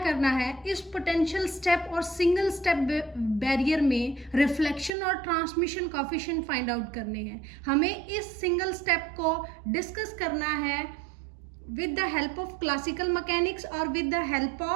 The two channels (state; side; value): drops out; left; at 4.9 s